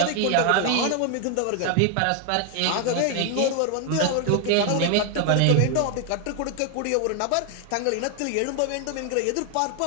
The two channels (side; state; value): both; different; correlation 0.00